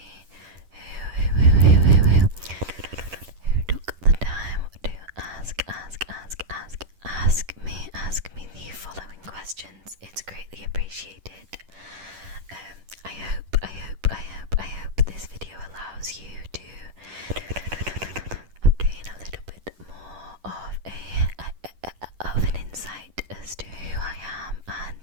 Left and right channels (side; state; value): left; late; 10 ms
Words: who took the time to ask me the following questions. It's greatly appreciated. I hope this video allows you to obtain a little bit more of an insight as to who I am and